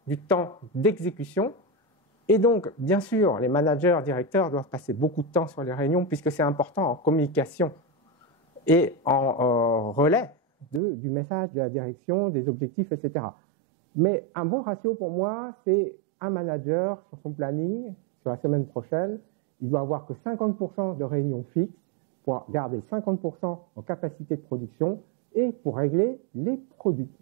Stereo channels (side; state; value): left; drops out; at 10.8 s